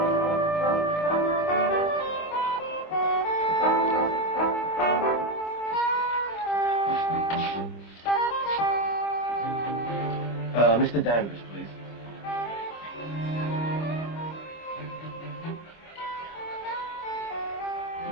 Mr. Danvers, please.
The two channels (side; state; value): right; late; 25 ms